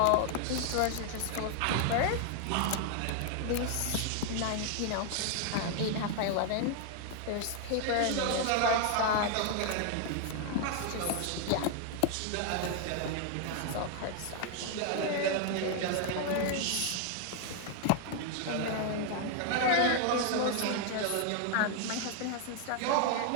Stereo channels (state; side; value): different; both; correlation 0.00